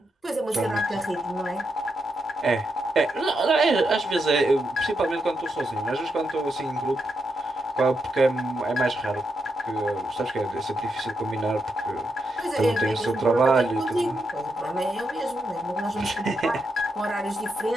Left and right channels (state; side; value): normal; both; correlation 0.83